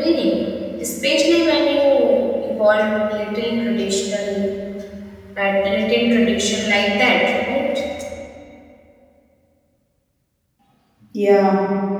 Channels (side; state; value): both; identical; correlation 1.00